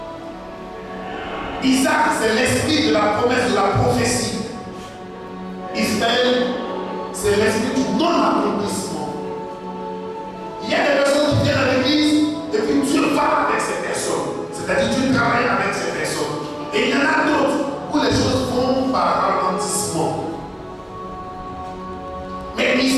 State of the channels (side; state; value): both; identical; correlation 1.00